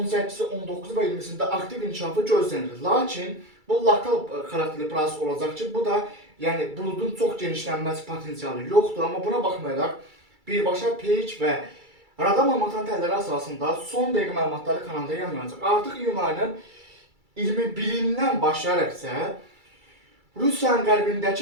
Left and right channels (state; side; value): late; left; 2.3 ms